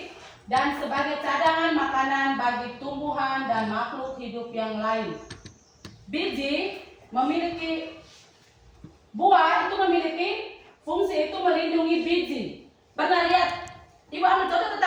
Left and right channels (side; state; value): both; identical; correlation 1.00